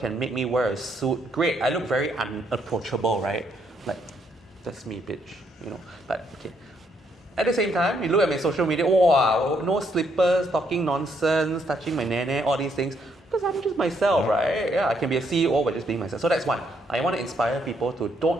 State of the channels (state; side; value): normal; both; correlation 0.72